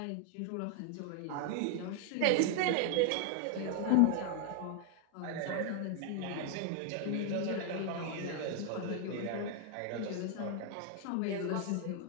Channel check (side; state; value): both; different; correlation 0.00